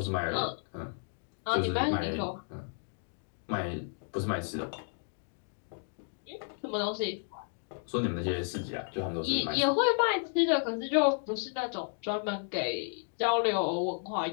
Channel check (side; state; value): right; silent; 56 dB below the other